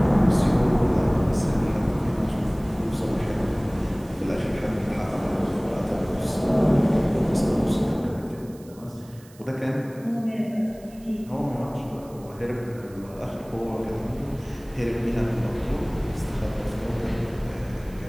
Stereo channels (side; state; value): right; noise; hiss, 25 dB below the sound